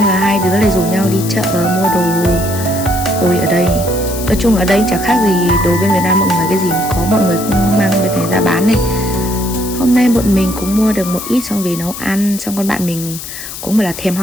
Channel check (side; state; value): left; noise; hiss, 10 dB below the sound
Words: là hai đứa lại rủ nhau đi chợ mua đồ. Ôi ở đây, nói chung ở đây chẳng khác gì đồ bên Việt Nam mọi người, cái gì có mọi người cũng mang bên này ra bán này. Hôm nay bọn mình cũng mua được một ít xong về nấu ăn. Xong con bạn mình cũng bảo là thèm